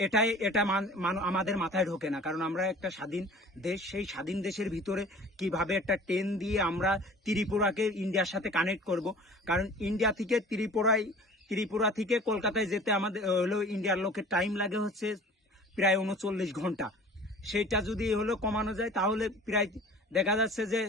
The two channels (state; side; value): normal; both; correlation 0.45